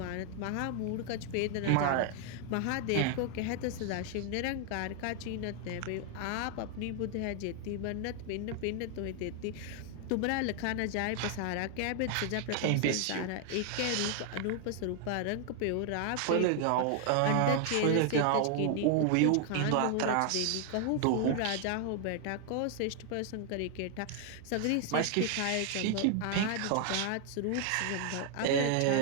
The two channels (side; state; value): both; different; correlation 0.00